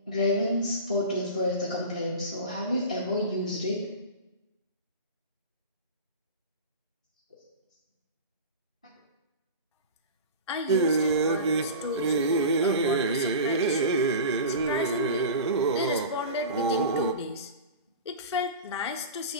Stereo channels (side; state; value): both; inverted; correlation -0.31